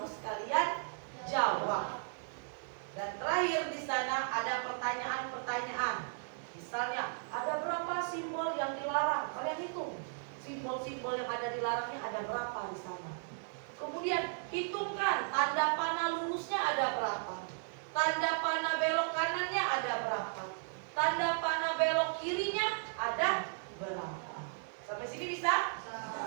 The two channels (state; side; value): silent; left; digital silence